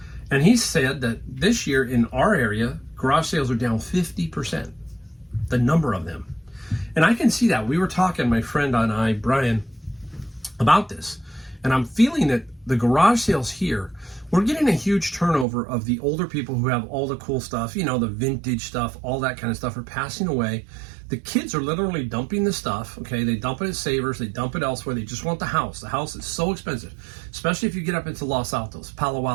And he said that this year in our area, garage sales are down 50%, the number of them. And I can see that. We were talking, my friend and I, Brian, about this. And I'm feeling that the garage sales here, we're getting a huge turnover of the older people who have all the cool stuff, you know, the vintage stuff, all that kind of stuff are passing away. The kids are literally dumping the stuff, okay? They dump it at Savers, they dump it elsewhere. They just want the house. The house is so expensive, especially if you get up into Los Altos, Palo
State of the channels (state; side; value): drops out; left; at 15.5 s